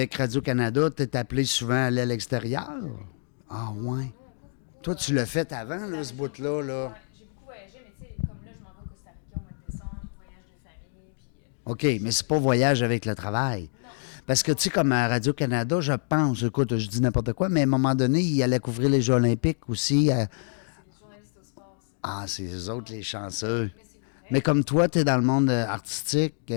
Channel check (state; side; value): silent; right; digital silence